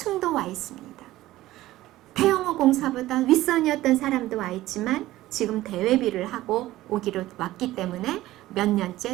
와 있습니다. 태영호 공사보다 윗선이었던 사람도 와 있지만 지금 대외비를 하고 오기로 왔기 때문에 몇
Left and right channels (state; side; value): quieter; left; 16.1 dB